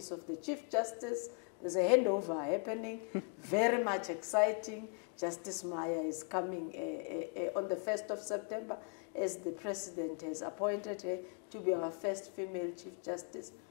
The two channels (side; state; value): right; quieter; 39.9 dB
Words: of the Chief Justice. There's a handover happening, very much exciting. Justice Maya is coming on the 1st of September, as the President has appointed her to be our first female Chief Justice.